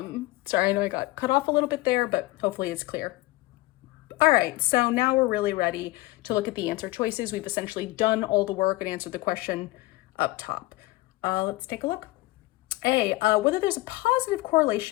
I know I got cut off a little bit there, but hopefully it's clear. All right, so now we're really ready to look at the answer choices. We've essentially done all the work and answered the question up top. Let's take a look. A, whether there's a positive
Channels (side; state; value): right; quieter; 20.0 dB